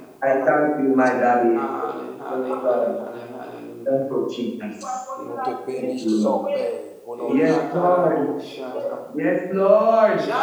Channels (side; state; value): both; identical; correlation 1.00